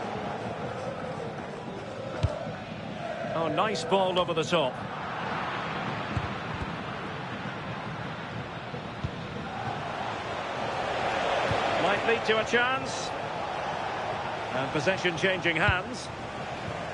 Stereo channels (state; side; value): identical; both; correlation 1.00